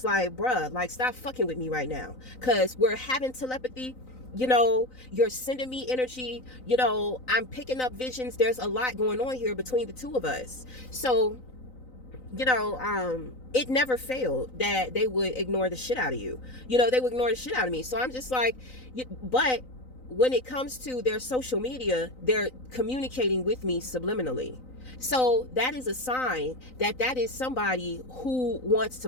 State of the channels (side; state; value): right; late; 3.9 ms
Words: like, bruh, like, stop fucking with me right now, because we're having telepathy. You know, you're sending me energy, you know, I'm picking up visions. There's a lot going on here between the two of us. So, you know, it never failed that they would ignore the shit out of you. You know, they would ignore the shit out of me. So I'm just like, but when it comes to their social media, they're communicating with me subliminally. So that is a sign that that is somebody who wants